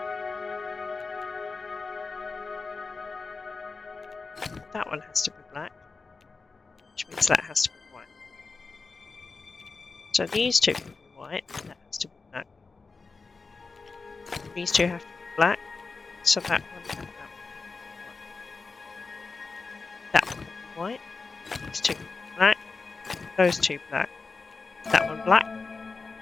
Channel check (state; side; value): quieter; right; 4.2 dB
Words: That one has to be black. Which means that has to be white. So these two can be white, that has to be black. These two have to be black, so that one and that one. That one can be white. These two can be black. Those two black. That one black.